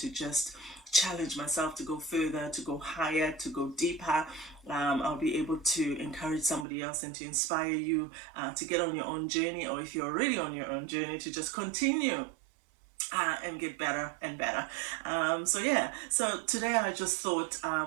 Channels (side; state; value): left; drops out; at 6.7 s